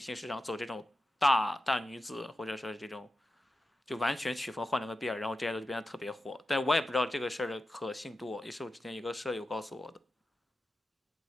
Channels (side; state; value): both; normal; correlation 0.91